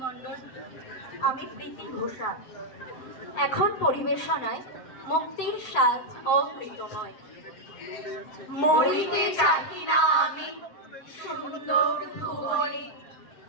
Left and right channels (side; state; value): right; late; 7.8 ms